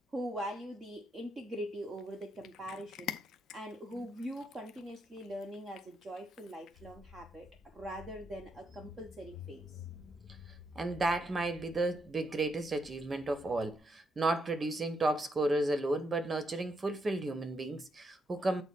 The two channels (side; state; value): both; normal; correlation 0.79